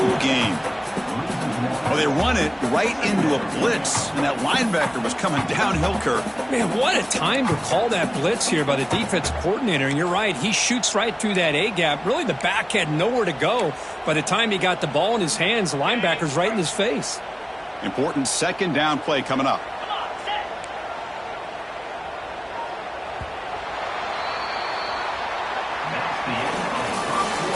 gain. Well, they run it right into a blitz, and that linebacker was coming downhill, Kirk. Man, what a time to call that blitz here by the defense coordinator. And you're right, he shoots right through that A-gap. Really, the back had nowhere to go. By the time he got the ball in his hands, the linebacker's right in his face. Important 2nd down play coming up.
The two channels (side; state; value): both; identical; correlation 1.00